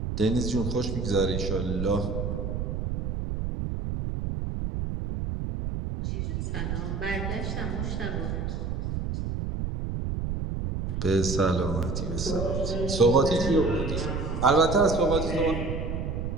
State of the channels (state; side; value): noise; right; rumble, 2 dB below the sound